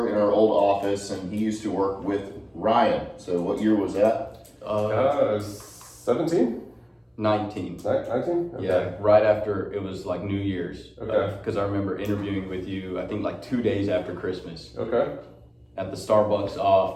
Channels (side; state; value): both; identical; correlation 1.00